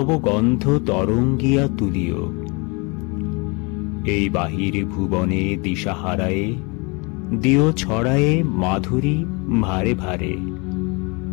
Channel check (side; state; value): right; quieter; 29.6 dB